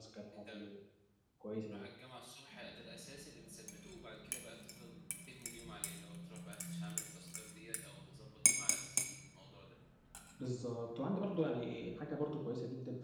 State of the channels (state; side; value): identical; both; correlation 1.00